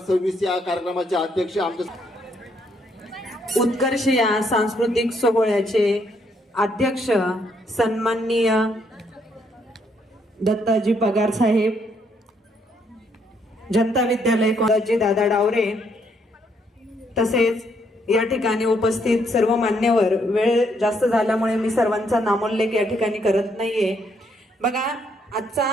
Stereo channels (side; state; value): both; normal; correlation 0.72